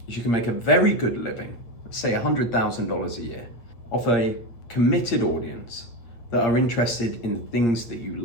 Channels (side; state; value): right; late; 8.4 ms